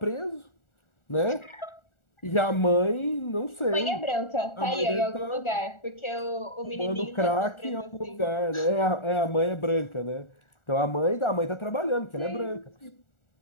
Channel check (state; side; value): late; right; 1.4 ms